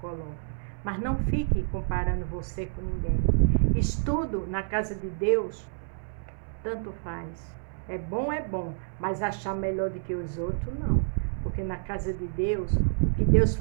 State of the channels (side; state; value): left; silent; 59 dB below the other